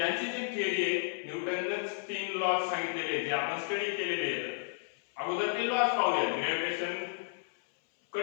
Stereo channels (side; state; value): right; silent; 56 dB below the other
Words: जी थिअरी आहे, न्यूटननेच 3 लॉज सांगितलेले जे आपण स्टडी केलेले आहेत. अगोदर ते लॉज पाहूया. ग्रॅव्हिटेशन